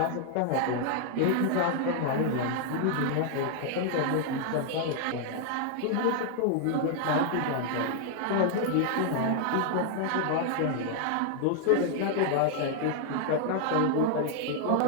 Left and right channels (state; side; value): different; both; correlation 0.00